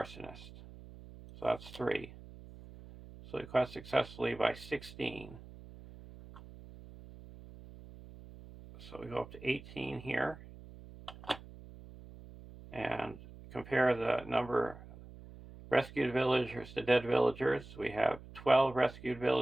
So that's 3. So we quest successfully by 16. So we go up to 18 here. And compare the number rescued villagers to dead villagers. We have 12 rescued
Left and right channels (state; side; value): noise; right; hum, 17 dB below the sound